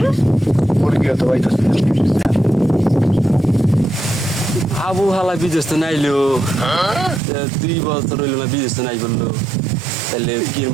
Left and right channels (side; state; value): left; drops out; at 7.2 s